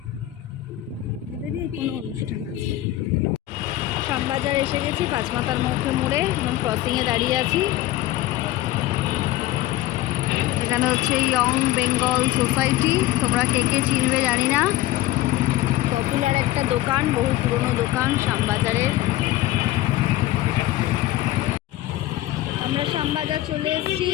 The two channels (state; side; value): quieter; right; 15.4 dB